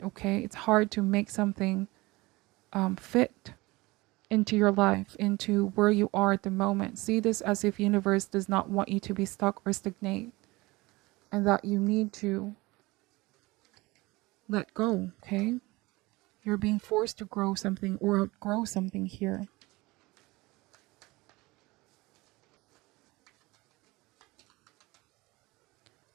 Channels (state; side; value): quieter; left; 22.0 dB